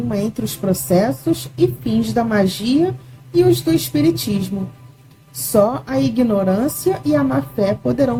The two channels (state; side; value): identical; both; correlation 1.00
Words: entre os processos e fins da magia e os do Espiritismo. Só a ignorância e a má-fé